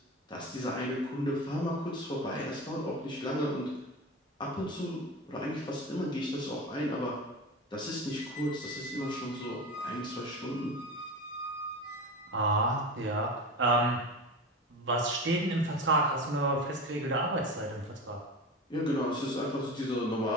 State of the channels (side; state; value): both; normal; correlation 0.28